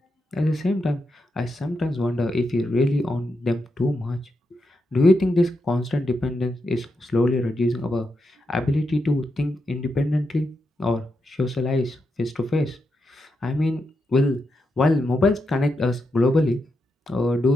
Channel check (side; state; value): both; normal; correlation 0.85